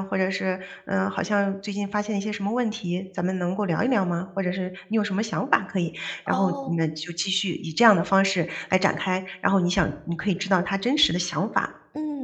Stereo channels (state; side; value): identical; both; correlation 1.00